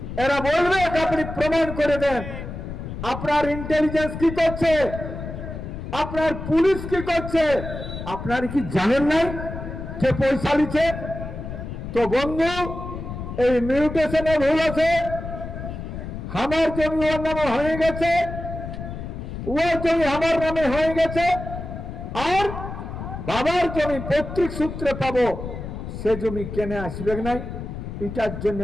এরা বলবে আপনি প্রমাণ করে দেন। আপনার ইন্টেলিজেন্স কি করছে, আপনার পুলিশ কি করছে, আপনার কি জানেন নাই যে পয়সা নিচ্ছে? তো বন্ধু, এই মিউটেশনে ভুল আছে। আমার জমি ওর নামে হয়ে গেছে, ওর জমি আমার নামে হয়ে গেছে, আর বাবার জমি পৈতৃক সূত্রে পাবো, সে জমি কেনে আসবে নাই। এটার জন্য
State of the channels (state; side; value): noise; left; rumble, 8 dB below the sound